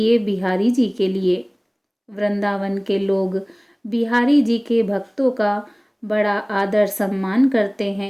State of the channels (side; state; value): both; identical; correlation 1.00